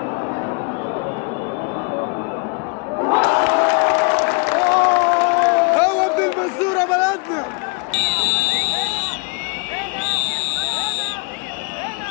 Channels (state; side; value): quieter; right; 33.1 dB